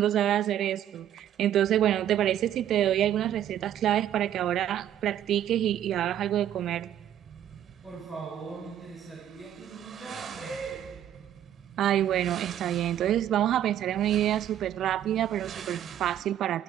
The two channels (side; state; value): left; quieter; 10.9 dB